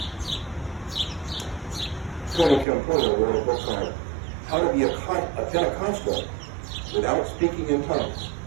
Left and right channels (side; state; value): left; drops out; at 2.7 s